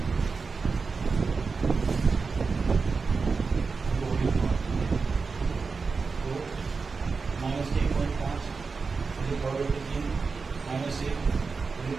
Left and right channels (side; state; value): left; quieter; 4.7 dB